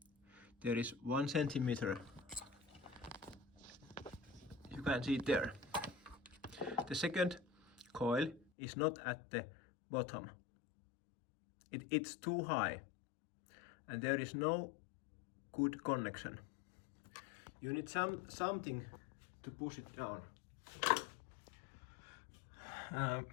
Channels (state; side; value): drops out; right; at 8.5 s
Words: There is 1 centimeter. You can see it there. The second coil is not at the bottom. It's too high and there is no good connection. You need something to push it down.